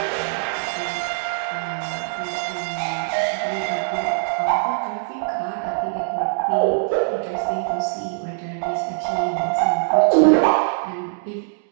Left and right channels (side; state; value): left; silent; digital silence